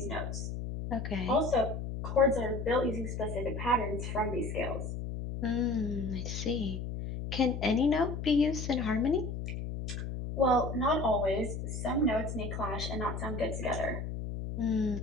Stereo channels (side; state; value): left; noise; hum, 5 dB below the sound